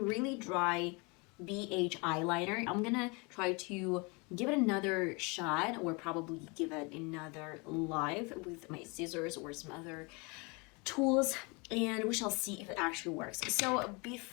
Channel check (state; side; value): quieter; right; 29.5 dB